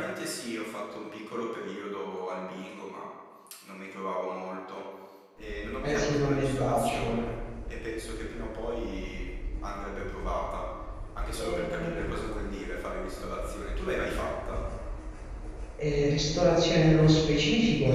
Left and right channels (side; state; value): both; identical; correlation 1.00